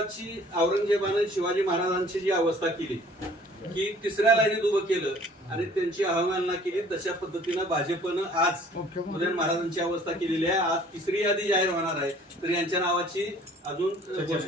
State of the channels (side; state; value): both; normal; correlation 0.53